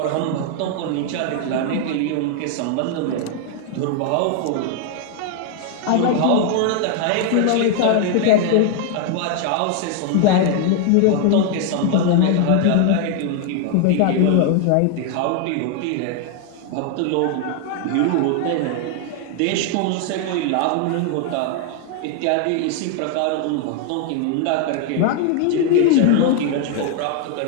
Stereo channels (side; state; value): both; different; correlation 0.00